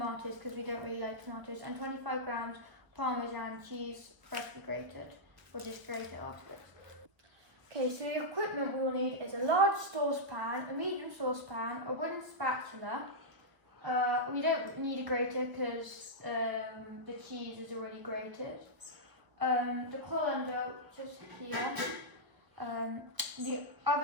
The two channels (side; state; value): left; late; 1.0 ms